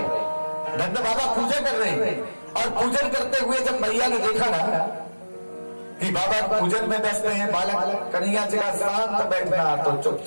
नंद बाबा पूजा कर रहे हैं और पूजन करते हुए जब मैया ने देखा ना कि बाबा पूजन में व्यस्त हैं, बालक कन्हैया जी का शांत बैठना, तो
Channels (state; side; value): inverted; both; correlation -1.00